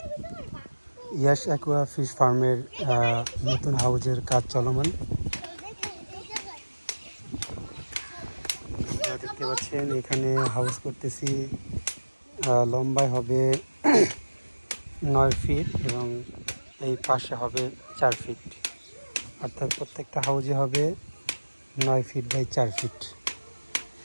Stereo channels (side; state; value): both; inverted; correlation -1.00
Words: Yash aqua fish ফার্মের নতুন হাউজের কাজ চলমান। আপনারা দেখতে পাচ্ছেন এখানে হাউস করতেছি। লম্বায় হবে 9 ফিট এবং এই পাশে হবে 4 ফিট, অর্থাৎ প্রত্যেকটা হাউজে হবে 9 ফিট বাই 4 ফিট।